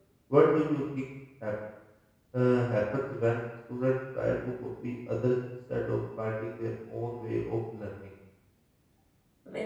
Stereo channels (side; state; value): both; identical; correlation 1.00